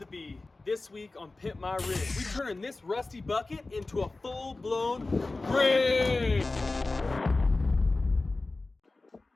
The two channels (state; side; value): quieter; right; 3.3 dB